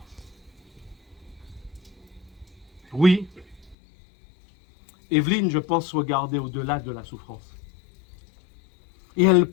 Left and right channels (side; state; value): right; drops out; at 3.8 s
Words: Oui, Evelyne, je pense, regardait au-delà de la souffrance. Et elle